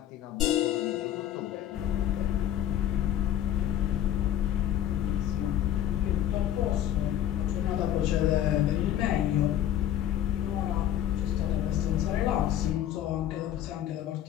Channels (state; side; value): quieter; right; 11.5 dB